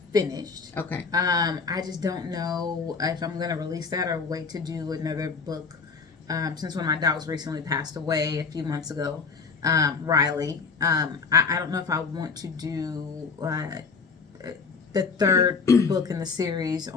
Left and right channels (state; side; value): quieter; right; 5.0 dB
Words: finished. Okay. I just don't know if I'm going to release that or wait to do another book. Since one of my dogs recently passed away a few months ago. Riley. I don't know if I want to do the 3rd book in the series